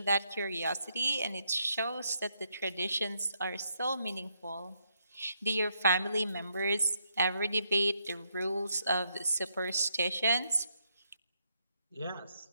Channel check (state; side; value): inverted; both; correlation -0.77